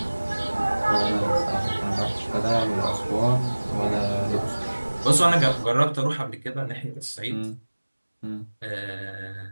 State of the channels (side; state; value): both; inverted; correlation -1.00